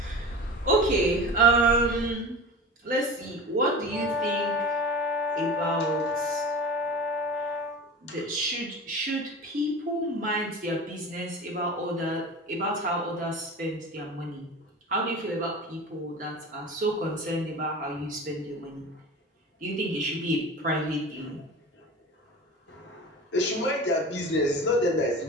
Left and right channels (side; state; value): both; normal; correlation 0.33